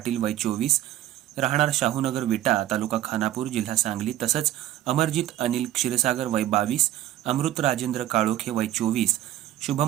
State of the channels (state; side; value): quieter; left; 13.2 dB